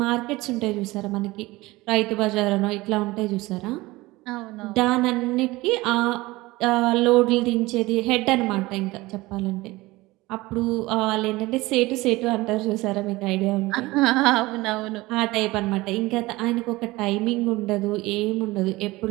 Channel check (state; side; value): quieter; left; 20.3 dB